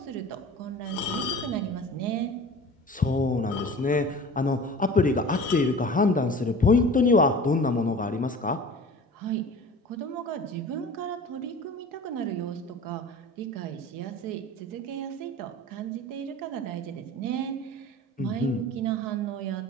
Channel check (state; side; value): normal; both; correlation 0.40